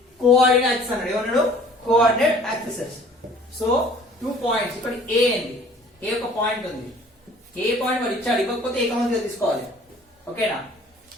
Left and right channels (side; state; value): both; normal; correlation 0.52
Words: కోఆర్డినేట్ యాక్సిస్ అన్నాడు, ఏమన్నాడు కోఆర్డినేట్ యాక్సిసెస్. సో 2 పాయింట్స్ ఇక్కడ ఏ అండి, ఏ ఒక పాయింట్ ఉంది, ఏ పాయింట్ వాడు ఇచ్చాడు, ఇవ్వకపోతే ఏ కామన్ తీసుకోవాలి, ఓకేనా,